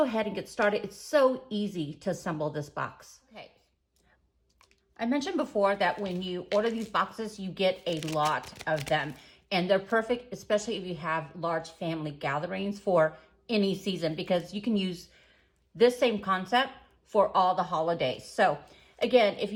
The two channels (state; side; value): identical; both; correlation 1.00